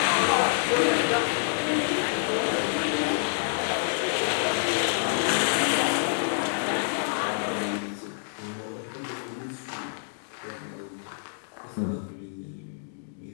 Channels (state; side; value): silent; right; 60 dB below the other